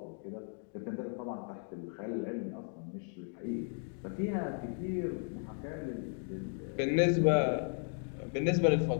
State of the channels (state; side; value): silent; right; 54 dB below the other